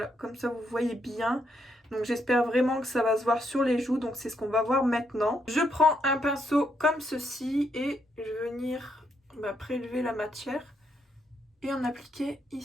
comme ça vous voyez bien. Donc j'espère vraiment que ça va se voir sur les joues, donc c'est ce qu'on va voir maintenant. Je prends un pinceau comme ceci et je vais venir prélever la matière et en appliquer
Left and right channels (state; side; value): normal; both; correlation 0.77